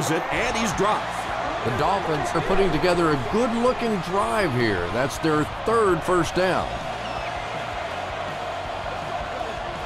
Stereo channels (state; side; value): identical; both; correlation 1.00